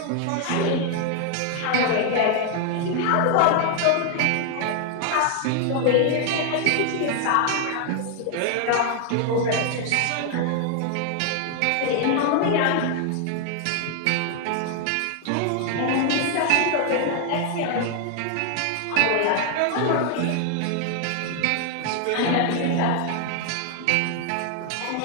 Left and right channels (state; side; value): different; both; correlation 0.00